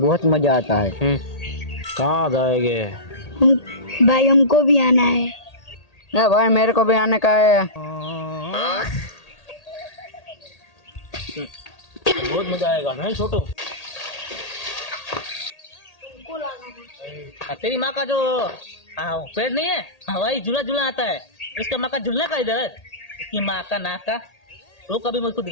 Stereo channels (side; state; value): right; late; 1.8 ms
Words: मजा आता है। कहाँ जाएंगे? भाई हमको भी आना है। ना भाई, मेरे को भी आने का है। बहुत मजा आएगा नहीं छोटू? तेरी माँ का जो पेड़ नहीं है, हवाई झूला झूला आता है, उसका माँ का झूलने का इधर है। इसकी माँ का नाक का। रुक, अभी मुझको